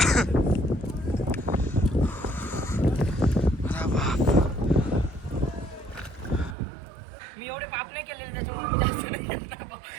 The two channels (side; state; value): left; drops out; at 6.6 s